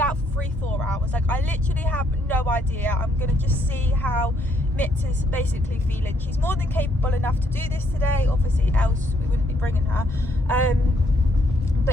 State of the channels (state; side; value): normal; both; correlation 0.71